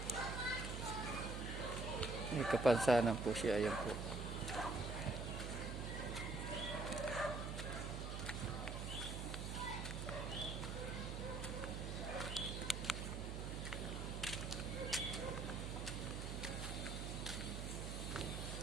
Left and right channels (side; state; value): right; noise; hum, 4 dB below the sound